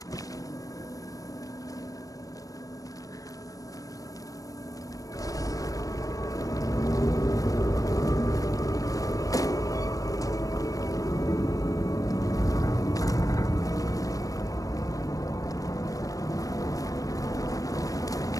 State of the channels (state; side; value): late; right; 0.17 ms